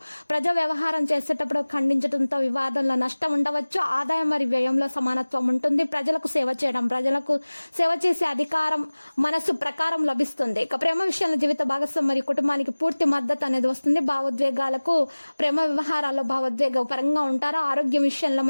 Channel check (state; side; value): inverted; both; correlation -1.00